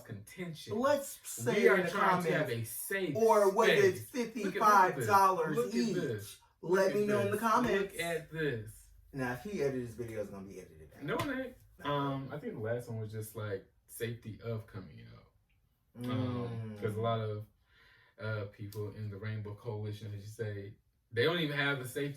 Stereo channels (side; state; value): both; identical; correlation 1.00